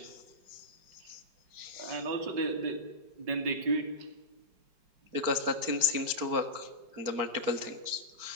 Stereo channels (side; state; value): left; late; 4.5 ms